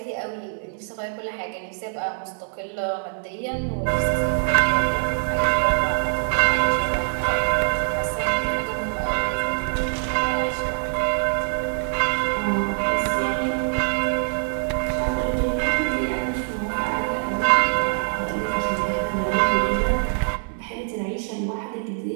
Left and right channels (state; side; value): silent; left; digital silence